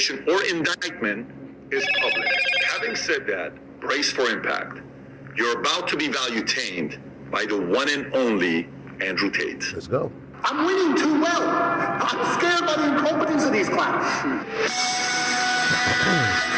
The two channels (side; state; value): both; identical; correlation 1.00